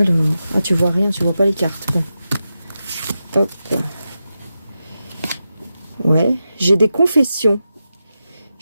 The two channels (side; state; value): both; inverted; correlation -0.90